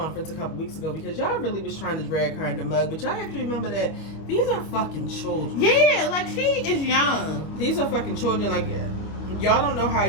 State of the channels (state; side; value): late; right; 25 ms